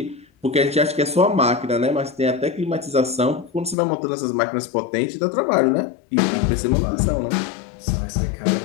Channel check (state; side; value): drops out; right; at 3.8 s